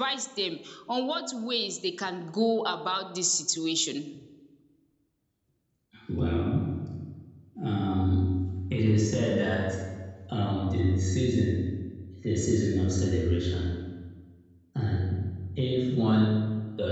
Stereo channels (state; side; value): identical; both; correlation 1.00